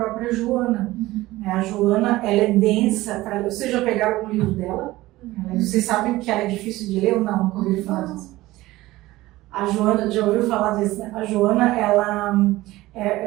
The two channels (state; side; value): quieter; left; 17.9 dB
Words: Joana. A Joana, ela é densa. Vocês já pegaram algum livro dela? Vocês sabem que ela é difícil de ler ou não? Nunca ouviram falar disso? A Joana, já ouviu falar disso, né? A Joana, ela